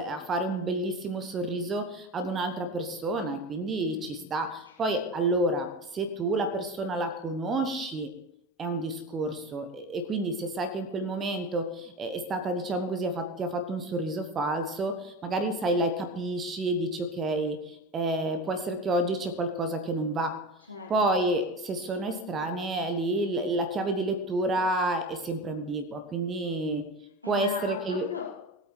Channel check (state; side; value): normal; both; correlation 0.27